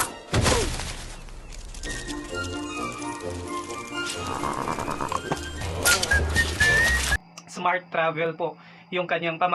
Smart travel po yung kanyang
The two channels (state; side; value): identical; both; correlation 1.00